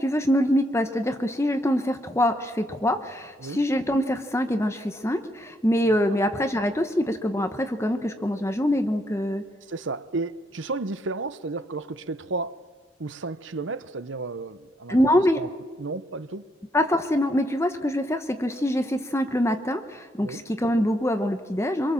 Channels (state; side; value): normal; both; correlation 0.74